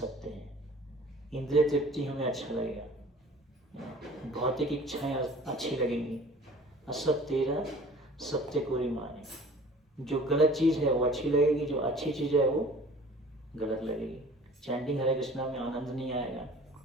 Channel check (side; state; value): both; normal; correlation 0.47